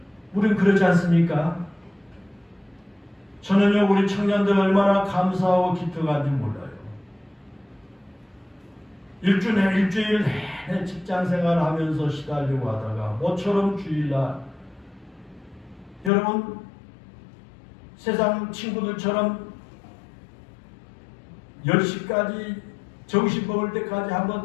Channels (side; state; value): right; drops out; at 16.1 s